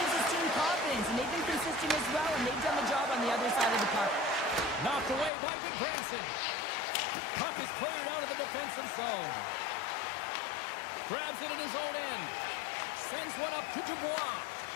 his team confidence, and they've been consistent as well, and they've done the job on the other side of the puck. Knocked away by Goodbranson. Puck is cleared out of the defensive zone. Grabs it in his own end. Sends one up to Dubois.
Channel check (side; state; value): right; drops out; at 5.3 s